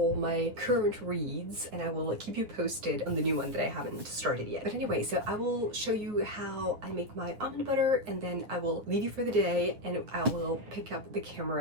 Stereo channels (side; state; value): left; late; 9.7 ms